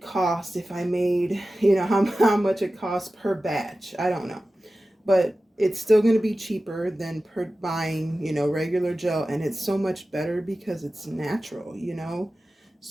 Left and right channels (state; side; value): normal; both; correlation 0.95